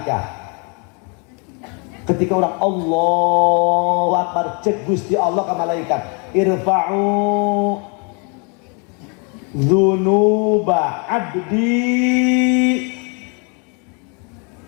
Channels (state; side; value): quieter; right; 35.0 dB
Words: ketika orang Allahu Akbar cek Gusti Allah ka malaikat irfa'u dzunuba 'abdi